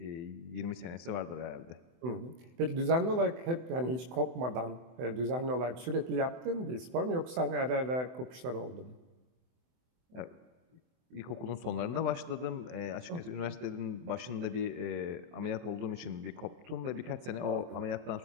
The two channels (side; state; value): left; late; 24 ms